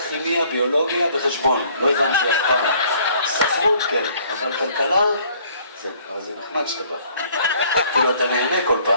כימיה, ביולוגיה וחשבון, לא הבנתי אף פעם, ספרות כן, אבל כלכלה, אבל זה נחמד שאתה בא, כאילו אתה נהנה כל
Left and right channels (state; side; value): inverted; both; correlation -0.59